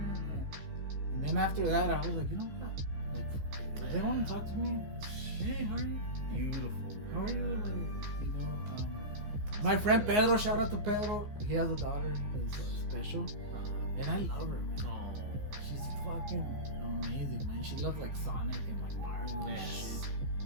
And then after that, I was like, you know what? Like, if they want to talk to me, hey, how are you? Beautiful. How are you? man. Like, you know, my friend Pedro, shout out to Pedro. He has a daughter who's special, and I love her. Man. Oh, She's fucking amazing, man. She loves like Sonic and like Mario and Yes. shit.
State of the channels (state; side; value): late; left; 15 ms